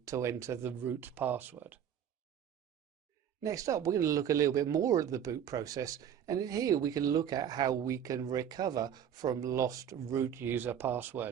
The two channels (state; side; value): quieter; left; 9.1 dB